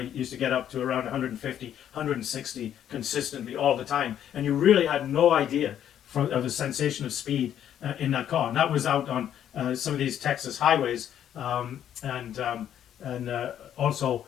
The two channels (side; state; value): right; quieter; 10.2 dB